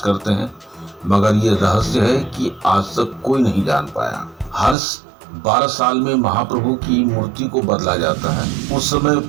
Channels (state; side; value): drops out; left; at 4.8 s